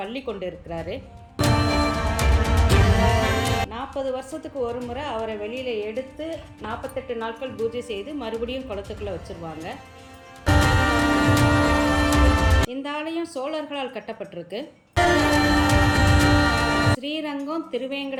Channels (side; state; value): both; identical; correlation 1.00